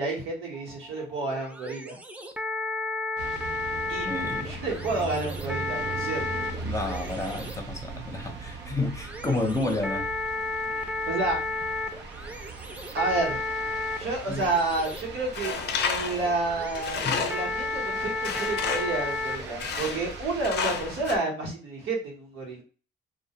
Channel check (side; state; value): both; normal; correlation 0.40